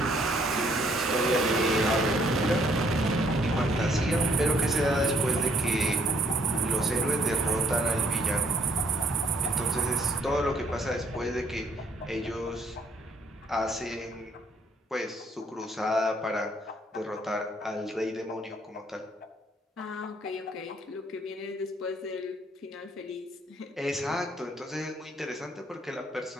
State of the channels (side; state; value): both; normal; correlation 0.66